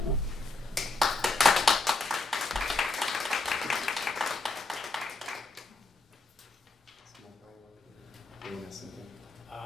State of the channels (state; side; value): quieter; right; 3.1 dB